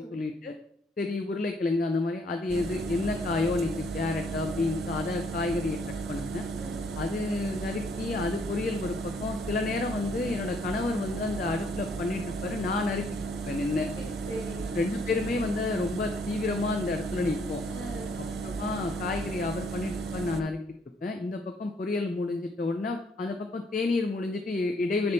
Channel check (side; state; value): both; normal; correlation 0.67